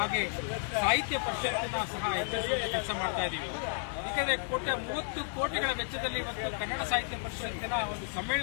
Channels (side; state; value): right; silent; digital silence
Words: ಸಾಹಿತ್ಯ ಪರಿಷತ್ತನ್ನ ಸಹ ಎಚ್ಚರಿಸುವಂತ ಕೆಲಸ ಮಾಡ್ತಾ ಇದ್ದೀವಿ. ಯಾಕಂದ್ರೆ 30 ಕೋಟಿಗಳ ವೆಚ್ಚದಲ್ಲಿ ಇವತ್ತು ಕನ್ನಡ ಸಾಹಿತ್ಯ ಪರಿಷತ್ತಿನ ಒಂದು